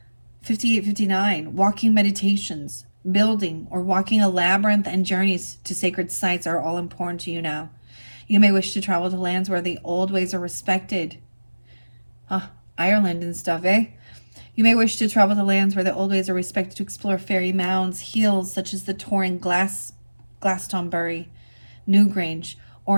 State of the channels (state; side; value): inverted; both; correlation -1.00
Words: 5859, walking meditations, building or walking a labyrinth, and journeys to sacred sites are all important to you now. You may wish to travel to lands where the old ways are respected. Ireland and stuff, eh? You may wish to travel to lands where the old ways are respected to explore fairy mounds, hills such as the Torring Glastonbury, Newgrange,